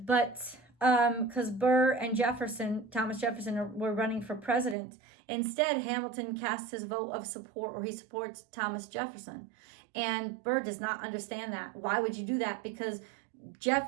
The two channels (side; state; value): left; drops out; at 4.8 s